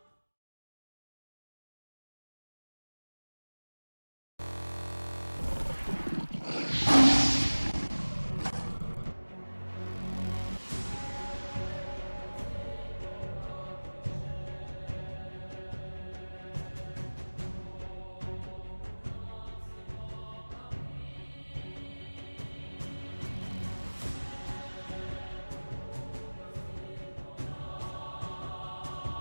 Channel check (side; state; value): both; inverted; correlation -1.00